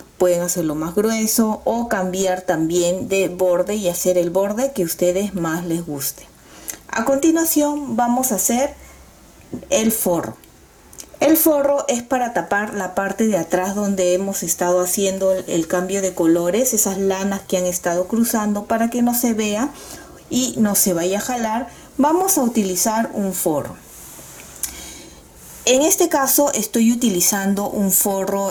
pueden hacerlo más grueso o cambiar también de borde y hacer el borde que a ustedes más les guste. A continuación vamos a hacer el forro. El forro es para tapar la parte de atrás donde hemos estado haciendo el cambio de colores, esas lanas que han estado cruzando, para que no se vea y no se vaya a jalar. Vamos a utilizar un forro. En este caso estoy utilizando un forro,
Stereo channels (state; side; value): identical; both; correlation 1.00